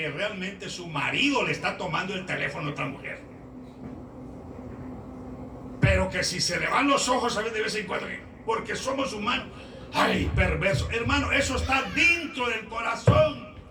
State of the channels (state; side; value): identical; both; correlation 1.00